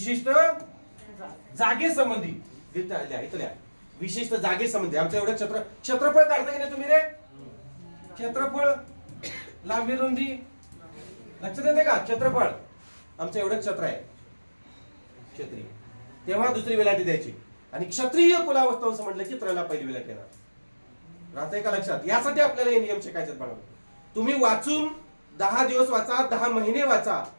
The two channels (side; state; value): both; inverted; correlation -1.00